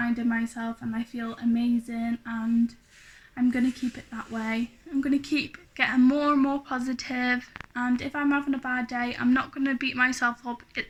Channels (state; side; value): identical; both; correlation 1.00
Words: myself, and I feel amazing, and I'm going to keep it that way. I'm going to keep getting more and more positive, and if I'm having a bad day, I'm not going to beat myself up.